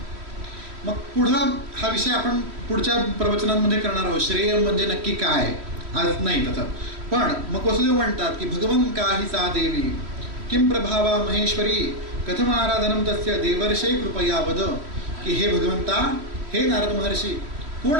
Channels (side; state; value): left; late; 3.1 ms